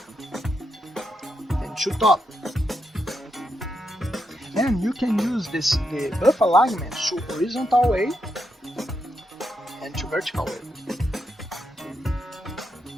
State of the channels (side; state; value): both; normal; correlation 0.83